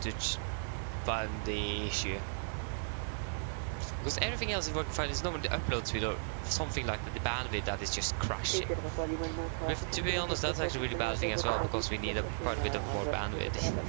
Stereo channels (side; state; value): left; silent; digital silence